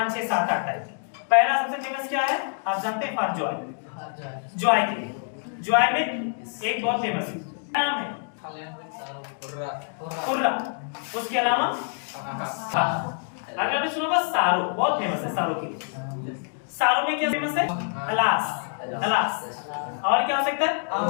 6 7 8 टाइप। पहला सबसे फेमस क्या है, आप जानते हैं, फॉर जॉय, जॉय के लिए, जॉय में एक बहुत फेमस नाम है कुर्रा, उसके अलावा अगर आपने सुना होगा सारो, बहुत फेमस है सारो के लिए। सारो में क्या फेमस है, अलास, अलास। और क्या हो सकता है,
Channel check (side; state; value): right; silent; 61 dB below the other